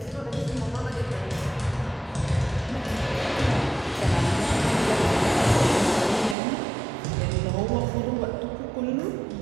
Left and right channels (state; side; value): drops out; left; at 6.4 s